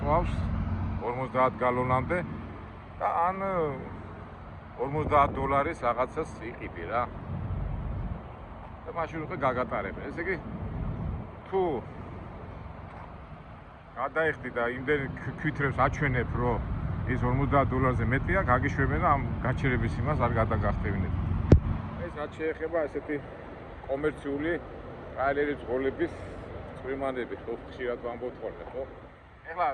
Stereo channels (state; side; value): identical; both; correlation 1.00